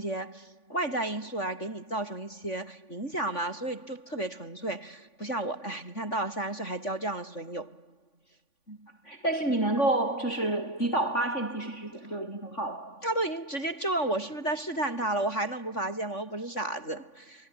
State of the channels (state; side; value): late; right; 3.5 ms